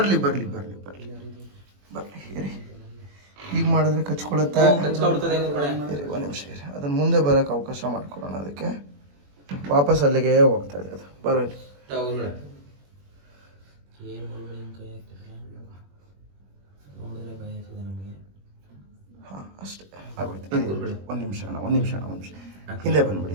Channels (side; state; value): left; late; 21 ms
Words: ಇರಿ. ಈಗ ಮಾಡಿದ್ರೆ ಕಚ್ಕೊಳುತ್ತೆ. ಕಚ್ಕೊಬಿಡ್ತದೆ ಗುರುಗಳೇ. ಇರಿ ಒಂದು ನಿಮಿಷ ಇರಿ. ಅದನ್ನು ಮುಂದೆ ಬರೋಕ್ಕೆ ಅವಕಾಶ ಮಾಡ್ಕೊಳ್ಳೋಣ. ಅದಕ್ಕೆ ವಾಪಸ್ ಅಲ್ಲಿಗೆ ಹೋಗ್ತಾ ಇದೆ ಅದು. ಬರಲಿ ಗುರುಗಳೇ. ಏನು ಗುರುಗಳೇ ಹಿಂಗೆ ಕೈ ಹಾಕ್ತಾರೆ ನೋಡಿದ್ರೆ ಭಯ ಆಗ್ತದೆ ನಮಗೆ. ಹಾಂ ಅಷ್ಟೇ ಆಗೋಯ್ತು. ಒಂದು ನಿಮಿಷ ಅಣ್ಣ ಹಿಂದೆ ಬಂದ್ಬಿಡಿ